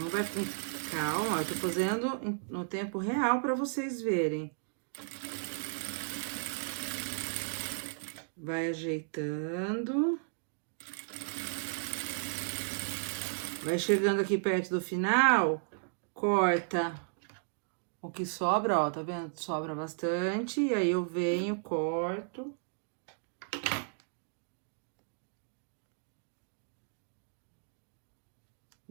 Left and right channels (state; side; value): silent; left; digital silence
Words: vai com calma, eu tô fazendo no tempo real pra vocês verem. Vai ajeitando. Vai chegando aqui perto do final, corta o que sobra, ó, tá vendo? Sobra bastante, e aí eu venho, corto.